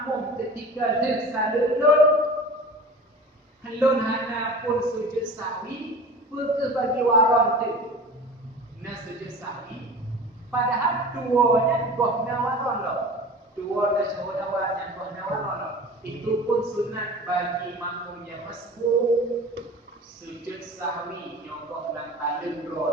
ketika tersalulun helun hana pun sujud sahwi, ke bagi waran tu na sujud sahwi, padahal duanya gohna waran lah, dua tasyahud awal dan gohna waran lah. Itu pun sunat bagi makmum yang masbuk sujud sahwi nyogoh dan talun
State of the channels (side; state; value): both; normal; correlation 0.37